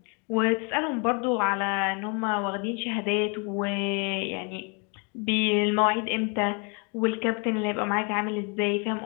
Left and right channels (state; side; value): quieter; right; 34.3 dB